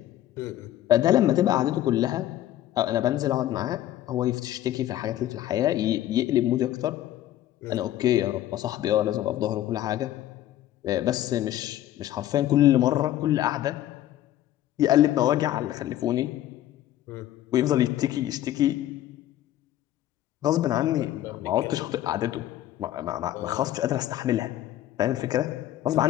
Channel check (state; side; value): quieter; right; 13.2 dB